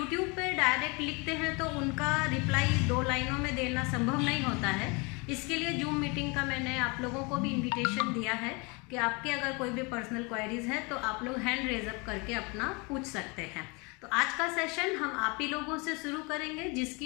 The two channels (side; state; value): right; quieter; 29.0 dB